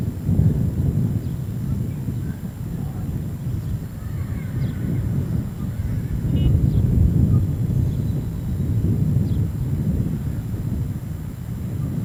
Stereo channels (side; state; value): both; identical; correlation 1.00